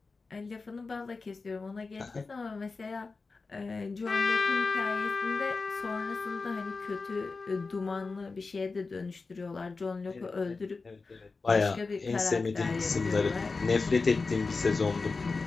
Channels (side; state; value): right; quieter; 4.1 dB